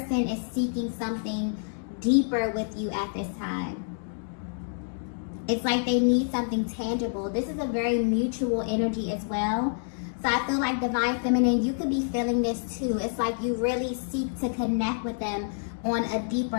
is seeking something deeper with you at this time. It's like they need something tangible. This is a very mutual energy as well. So I feel like Divine Feminine, you could be feeling this too. It's like you really seek to connect with them on a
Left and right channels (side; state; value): right; silent; digital silence